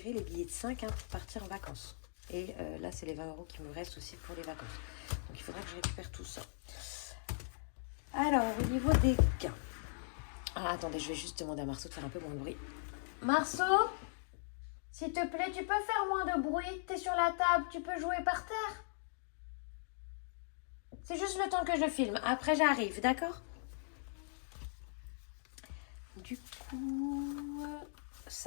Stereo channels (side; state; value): right; silent; digital silence